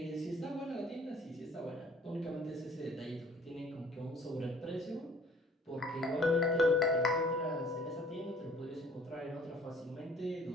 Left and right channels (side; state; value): both; normal; correlation 0.54